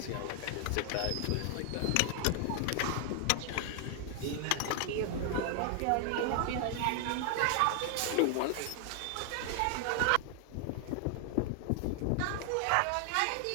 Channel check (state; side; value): different; both; correlation 0.00